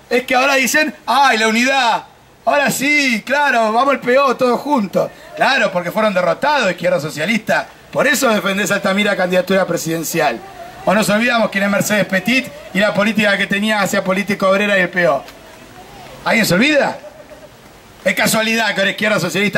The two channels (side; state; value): both; identical; correlation 1.00